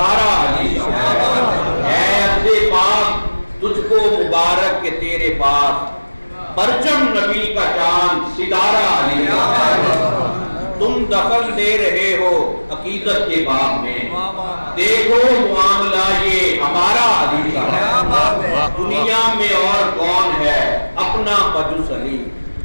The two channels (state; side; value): inverted; both; correlation -1.00